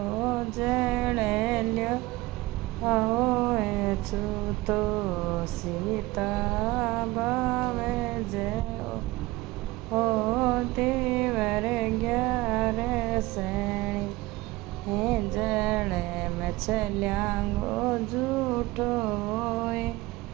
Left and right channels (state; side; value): quieter; left; 20.0 dB